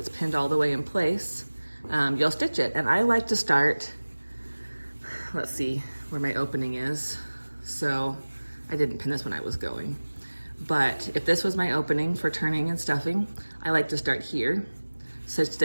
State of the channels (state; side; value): inverted; both; correlation -1.00